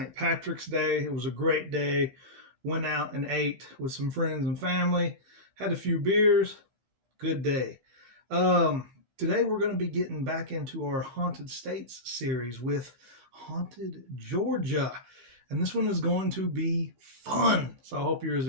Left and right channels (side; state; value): left; late; 15 ms